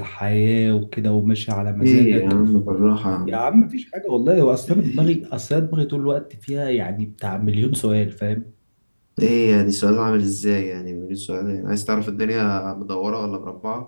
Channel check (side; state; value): both; inverted; correlation -1.00